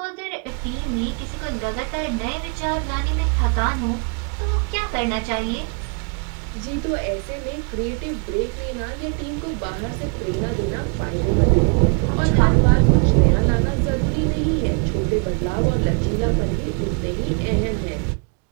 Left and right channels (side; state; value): left; quieter; 37.3 dB